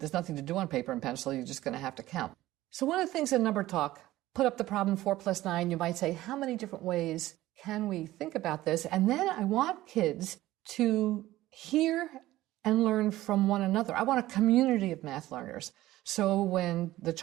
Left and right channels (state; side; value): quieter; left; 16.0 dB